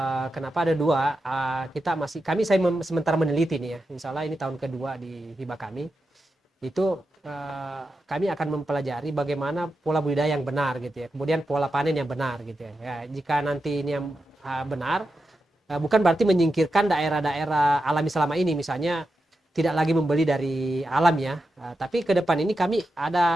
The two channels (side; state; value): both; normal; correlation 0.89